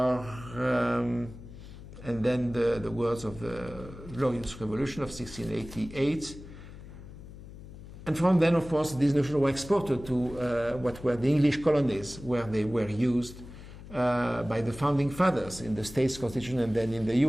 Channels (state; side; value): noise; left; hum, 15 dB below the sound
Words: and then the words of the Glorious Revolution of 1688. And from then, of course, these notions were exported to what were the English colonies, where they were used by the founding fathers in the States Constitution and then in the